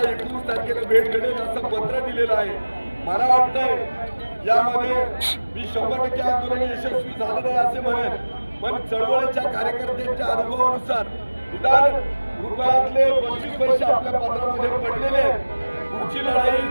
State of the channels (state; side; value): inverted; both; correlation -1.00